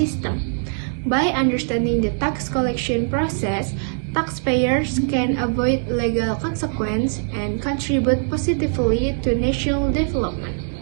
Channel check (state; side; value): silent; left; 62 dB below the other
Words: By understanding the tax collection process, taxpayers can avoid legal consequences and contribute positively to national development.